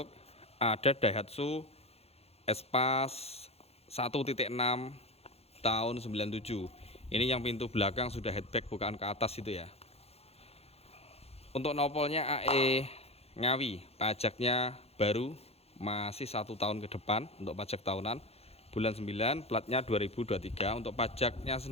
ada Daihatsu Espace 1.6 tahun 97. Ini yang pintu belakang sudah headback, bukaan ke atas itu ya. Untuk nopolnya AE Ngawi, pajaknya baru, masih 1 tahun ke depan untuk pajak tahunan, bulan 9, platnya 2023. Untuk pajaknya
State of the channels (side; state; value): right; late; 0.29 ms